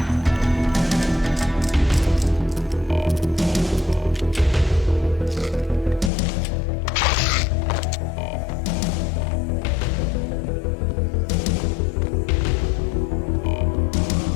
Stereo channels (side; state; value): right; drops out; at 6.1 s